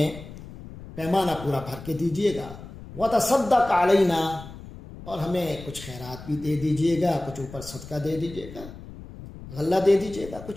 پیمانہ پورا بھر کے دیجیے گا۔ وتصدق علینا، اور ہمیں کچھ خیرات بھی دے دیجیے گا، کچھ اوپر صدقہ دے دیجیے گا، غلہ دے دیجیے گا،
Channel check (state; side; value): noise; left; rumble, 14 dB below the sound